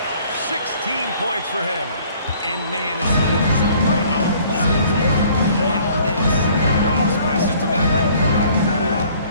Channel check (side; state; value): both; inverted; correlation -0.57